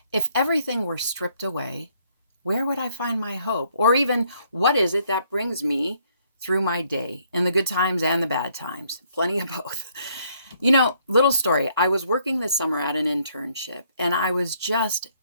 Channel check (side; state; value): both; inverted; correlation -0.68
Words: if everything were stripped away, where would I find my hope? Or even, what is it that brings me through my day in the good times and the bad times? Plenty of both. Little story. I was working this summer at an internship, and I was just